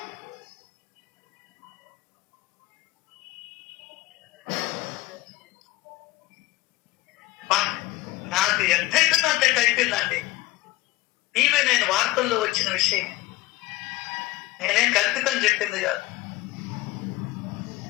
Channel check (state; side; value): quieter; right; 17.9 dB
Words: నాకు ఎంతైతుందంటే అయిపోయిందండి. ఇవే నేను వార్తల్లో వచ్చిన విషయం, నేనేం కల్పితం చెప్పింది కాదు.